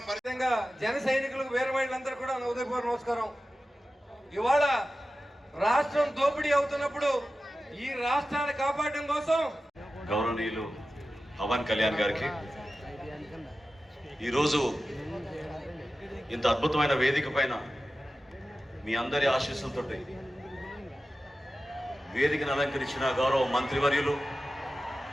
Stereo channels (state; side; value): normal; both; correlation 0.94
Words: పరితంగా జన సైనికులకు వేరే వాళ్ళందరూ కూడా ఉదయపూర్వ నమస్కారం. ఇవాళ రాష్ట్రం దోపిడీ అవుతున్నప్పుడు ఈ రాష్ట్రాన్ని కాపాడడం కోసం గౌరవనీయులు పవన్ కళ్యాణ్ గారికి ఈరోజు ఇంత అద్భుతమైన వేదిక పైన మీ అందరి ఆశీస్సులతో వేదికను అలంకరించిన గౌరవ మంత్రివర్యులు,